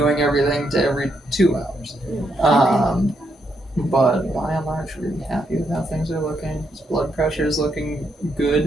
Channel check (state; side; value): normal; both; correlation 0.78